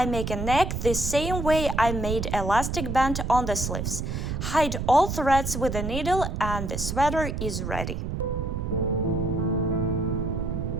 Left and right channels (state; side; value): noise; right; rumble, 3 dB below the sound